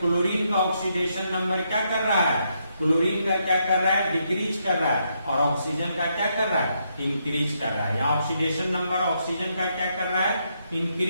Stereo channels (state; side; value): inverted; both; correlation -0.78